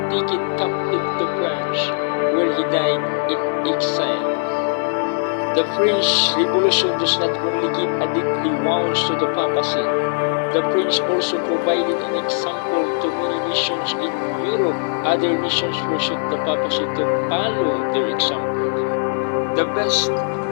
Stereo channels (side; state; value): right; silent; 57 dB below the other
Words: taken captive to France, where he died in exile. The French Revolution does not only give a deadly wounds to the papacy. The French also provided an example to many nations in Europe. Other nations pursued the papacy to follow their example. The best